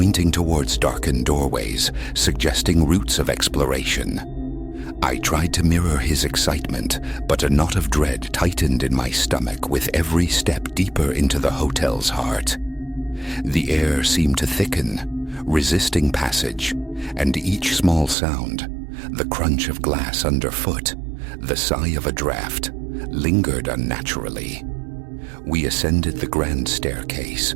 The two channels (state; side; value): drops out; left; at 18.2 s